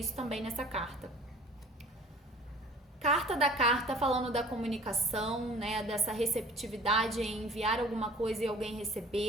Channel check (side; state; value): both; normal; correlation 0.48